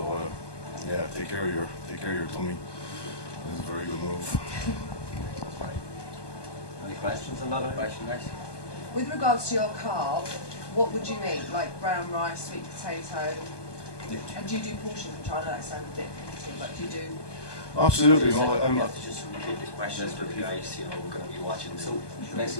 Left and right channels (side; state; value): right; late; 1.2 ms